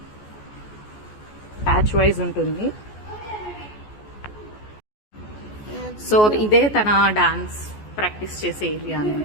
batch wise ఉంటుంది. సో ఇదే తన డాన్స్ ప్రాక్టీస్ చేసే ఏరియా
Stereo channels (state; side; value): late; right; 14 ms